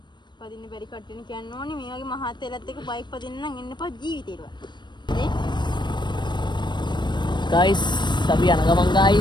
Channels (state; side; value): late; right; 0.22 ms